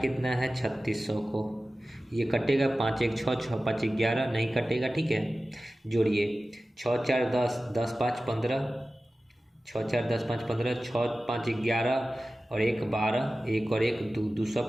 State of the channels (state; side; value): normal; both; correlation 0.95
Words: है 3600 को। ये कटेगा 5 1 6, 6 5 11, नहीं कटेगा, ठीक है। जोड़िए 6 4 10, 10 5 15, 6 4 10 5 15, 6 5 11 और 1 12, 1 और 1 2,